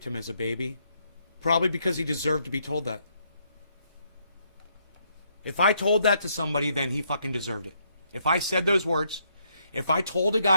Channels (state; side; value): inverted; both; correlation -0.73